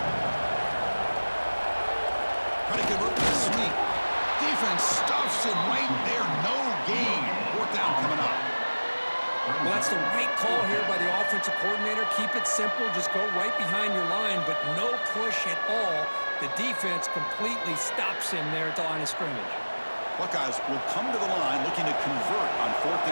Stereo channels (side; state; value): both; inverted; correlation -1.00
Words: Trying to convert the sweep. Defense stuffs him right there. No gain. 4th down coming up. Well, that's the right call here by the offensive coordinator. Keep it simple. Just go right behind your line, but no push at all. The defense completely stops him there at the line of scrimmage. Buckeyes will come to the line looking to convert on 4th